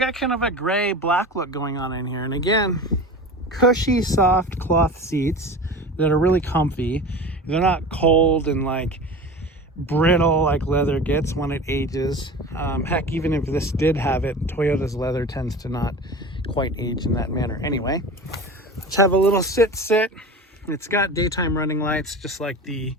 kind of a gray black look going on in here. And again, cushy, soft cloth seats that are really comfy. They're not cold and like brittle like leather gets when it ages. Heck, even if this did have it, Toyota's leather tends to not quite age in that manner. Anyway, let's have a little sit. It's got daytime running lights, just like the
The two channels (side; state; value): both; normal; correlation 0.33